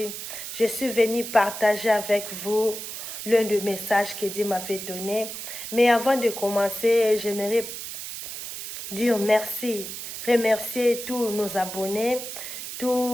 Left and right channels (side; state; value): right; noise; hiss, 8 dB below the sound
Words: Je suis venue partager avec vous l'un des messages que Dieu m'avait donné. Mais avant de commencer, j'aimerais dire merci, remercier tous nos abonnés,